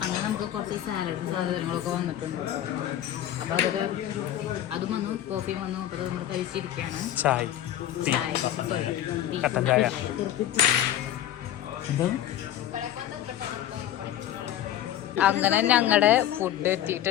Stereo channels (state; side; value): quieter; right; 11.9 dB